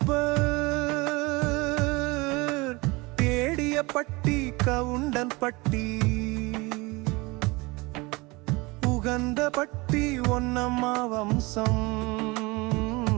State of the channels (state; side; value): quieter; left; 24.5 dB